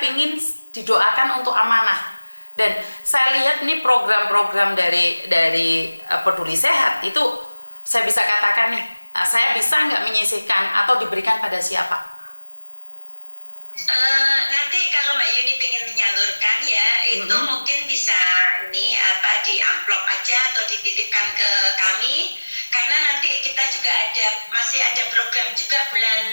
didoakan untuk amanah. Dan saya lihat nih program-program dari Peduli Sehat itu, saya bisa katakan nih, saya bisa nggak menyisihkan atau diberikan pada siapa? Nanti kalau Mbak Yuni pengen menyalurkan, ya, itu mungkin bisa di amplop aja atau dititipkan ke kami, karena nanti kita juga masih ada program juga bulan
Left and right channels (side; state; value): both; inverted; correlation -1.00